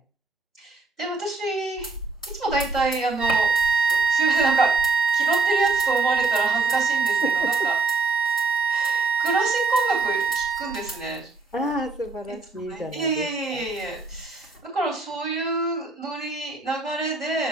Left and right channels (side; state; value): left; quieter; 4.0 dB